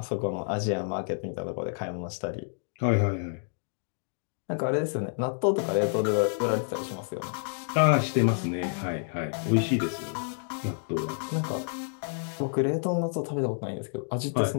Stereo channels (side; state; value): right; silent; digital silence